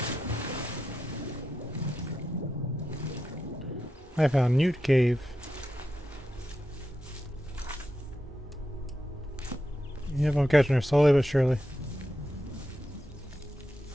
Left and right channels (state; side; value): normal; both; correlation 0.87